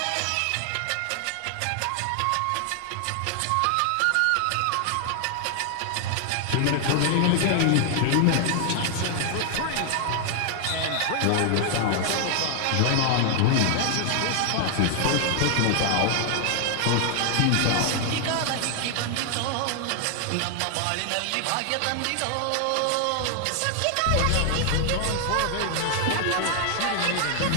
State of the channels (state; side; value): different; both; correlation 0.00